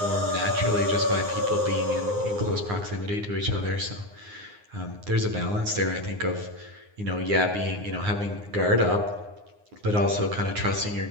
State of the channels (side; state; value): left; late; 9.7 ms